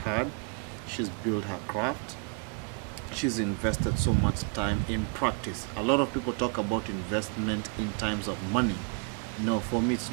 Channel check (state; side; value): quieter; left; 39.7 dB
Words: she's built her craft, she's invested so much time in practice. A lot of people talk about investment in times of money. No, for me it's